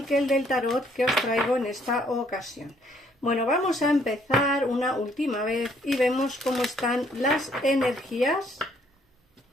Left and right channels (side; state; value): both; normal; correlation 0.66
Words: que el del tarot que os traigo en esta ocasión. Bueno, vamos a empezar una última vez y vemos cómo están las energías.